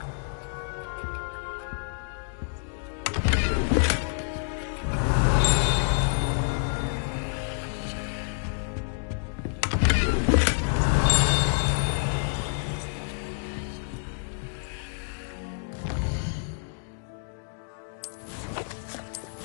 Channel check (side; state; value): right; silent; digital silence